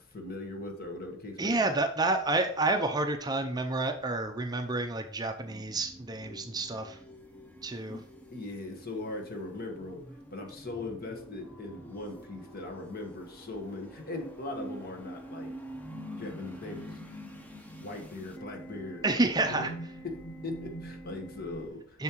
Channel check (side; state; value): both; normal; correlation 0.27